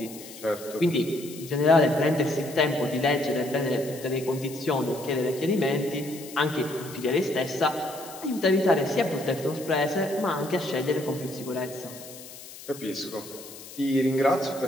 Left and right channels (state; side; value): noise; left; hiss, 16 dB below the sound